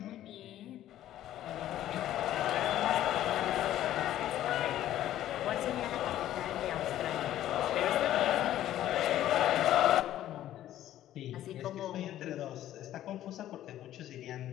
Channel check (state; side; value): quieter; right; 12.8 dB